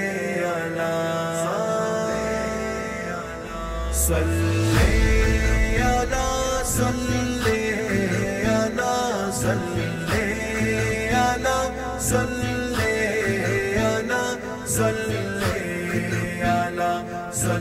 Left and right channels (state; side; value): identical; both; correlation 1.00